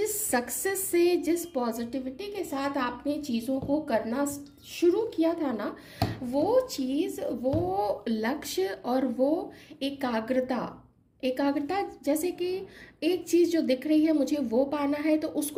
सक्सेस से, जिस पॉजिटिविटी के साथ आपने चीज़ों को करना शुरू किया था ना, वो चीज़, वो लक्ष्य और वो एकाग्रता, एकाग्रता जैसे कि एक चीज़ जो दिख रही है मुझे वो पाना है, तो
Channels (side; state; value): both; identical; correlation 1.00